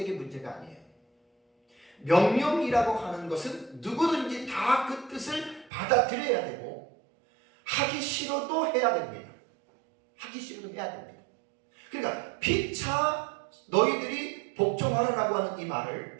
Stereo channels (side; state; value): left; drops out; at 5.7 s